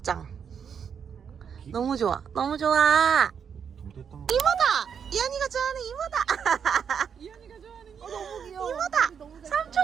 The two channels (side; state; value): left; quieter; 7.2 dB